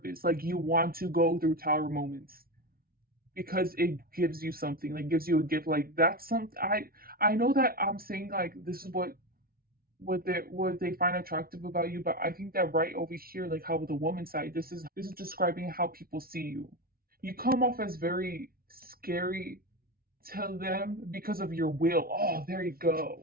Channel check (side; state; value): left; late; 0.43 ms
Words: Like you want to go through tower moments because it gives you something, like gives you a gift. Like that's something I know that I'm saying like this is what they find attractive about you, but I think that right over here, like how with the woman side, this is describing how people see you. You come off as very scary to them because of your will. Oh, there you